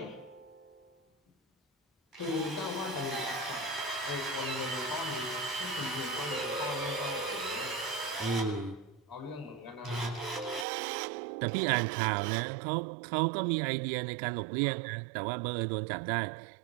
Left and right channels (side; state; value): left; drops out; at 10.7 s